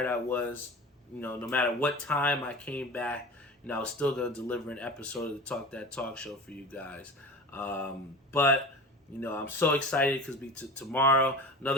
I was, no matter what time I came back, I was still going to deliver an episode of the Talk That Talk show for you guys. But I'm so excited because tomorrow,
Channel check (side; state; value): both; normal; correlation 0.34